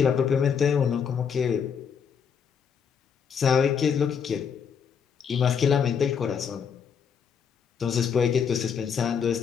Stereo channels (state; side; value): quieter; right; 7.0 dB